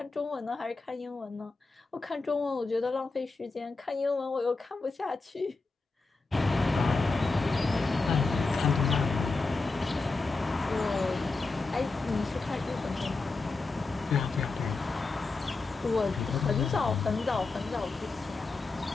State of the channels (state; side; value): quieter; right; 3.7 dB